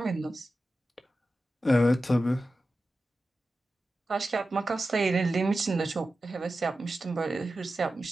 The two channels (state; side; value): normal; both; correlation 0.93